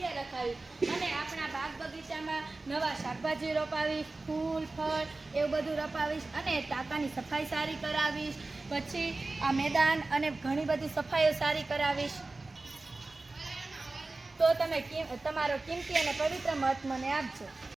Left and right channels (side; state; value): left; quieter; 3.3 dB